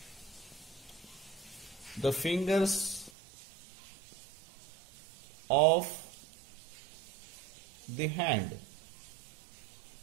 the fingers of the hand.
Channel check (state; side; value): drops out; left; at 3.1 s